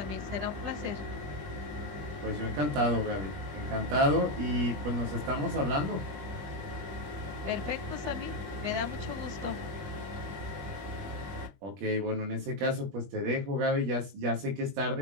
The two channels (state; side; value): late; left; 21 ms